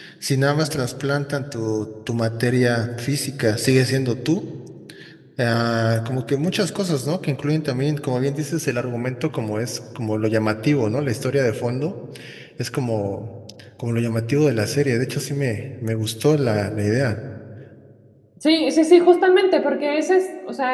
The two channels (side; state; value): both; identical; correlation 1.00